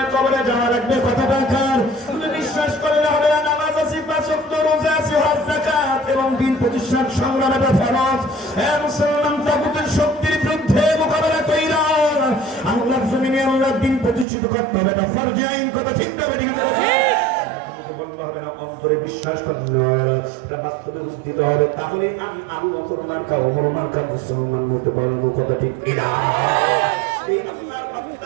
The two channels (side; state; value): left; drops out; at 14.2 s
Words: কবরে যাওয়া লাগবে, কথাটা কার? তুমি বিশ্বাস করলে হবে না, নামাজ আছে, পাঁচ ওয়াক্ত রোজা আছে, হজ যাকাত এবং দিন প্রতিষ্ঠার সংগ্রাম এটা ফরজ। মুসলমান তাগুতের শক্তির বিরুদ্ধে মোকাবেলা কইরা আল্লাহর জমিনে আল্লাহর দিন প্রতিষ্ঠিত করতে হবে, এটা ফরজ আইন, কথা ঠিক না ঠিক? হবে না, অন্তরে বিশ্বাস করতে হবে, এটা বাস্তবে উদ্দিত হবে, তাহলে আমি আবু বকর মার্কা ওমর মার্কা মুসলমান হতে পারবো, কথা ঠিক কিনা?